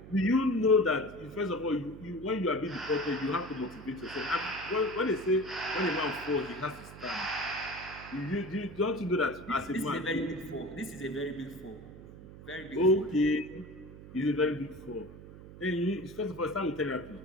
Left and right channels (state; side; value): noise; right; hum, 16 dB below the sound